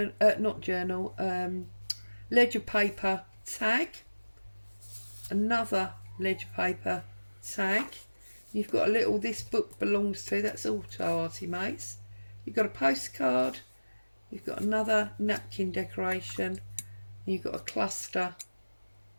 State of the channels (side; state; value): both; inverted; correlation -1.00